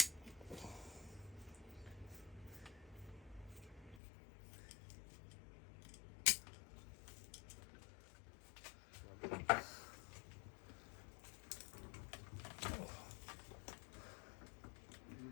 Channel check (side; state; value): right; drops out; at 4.0 s